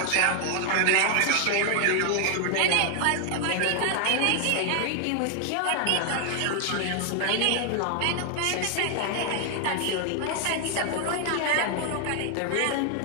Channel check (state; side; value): different; both; correlation 0.00